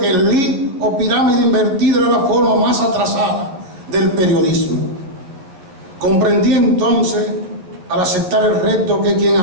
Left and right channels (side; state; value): left; late; 11 ms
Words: el LID o pirámide invertida era la forma más atrasada del periodismo. Comprendí entonces, al aceptar el reto, que quien